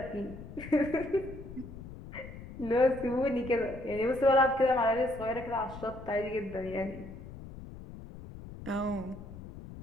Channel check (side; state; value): left; noise; rumble, 13 dB below the sound